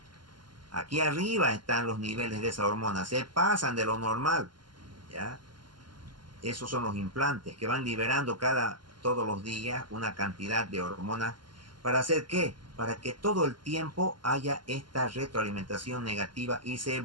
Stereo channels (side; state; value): left; late; 0.71 ms